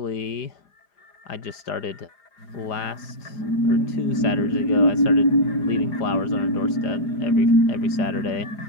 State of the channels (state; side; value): late; right; 4.9 ms